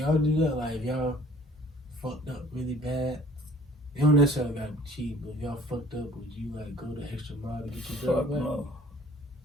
do that? Like, if y'all fucked up really bad, you don't necessarily gotta cheat, but if y'all fucked up, would you like go the extra mile to get your girl Fuck back? no.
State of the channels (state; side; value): normal; both; correlation 0.53